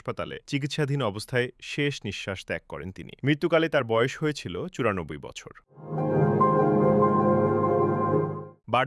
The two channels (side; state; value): both; identical; correlation 1.00